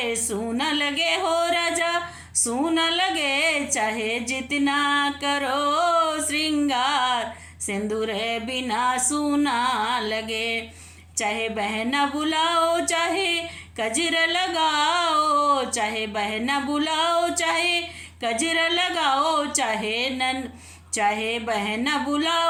सूना लगे हो राजा, सूना लगे। चाहे जितना करो श्रृंगार, सिंदूर बिना सूना लगे। चाहे बहना बुलाओ, चाहे कजरा लगाओ। चाहे बहना बुलाओ, चाहे कजरा लगाओ। चाहे बहना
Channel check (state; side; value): identical; both; correlation 1.00